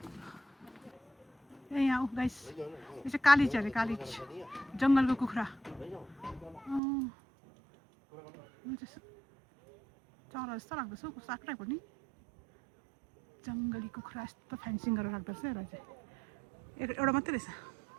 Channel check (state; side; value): drops out; left; at 6.8 s